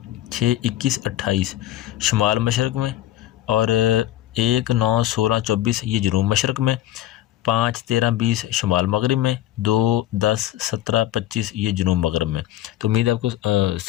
6، 21، 28 شمال مشرق میں، اور 1، 9، 16، 24 یہ جنوب مشرق میں، 5، 13، 20 شمال مغرب میں، 2، 10، 17، 25 یہ جنوب مغرب میں۔ تو امید ہے آپ کو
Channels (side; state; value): right; quieter; 13.8 dB